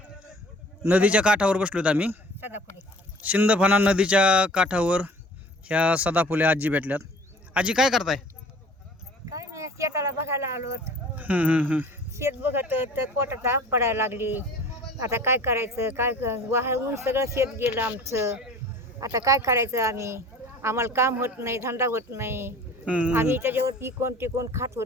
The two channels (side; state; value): both; normal; correlation 0.46